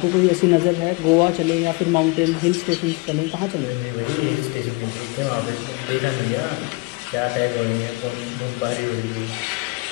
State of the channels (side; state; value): right; quieter; 26.6 dB